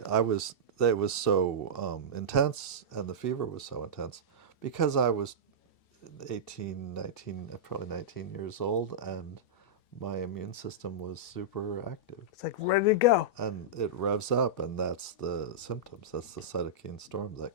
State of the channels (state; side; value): late; right; 2.7 ms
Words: was so intense, and the fever was so intense because I was 18, 19, probably 19 years old, and my immune system was super active. It's like ready to go. And it revs up, and that's the symptoms. That's the cytokine storm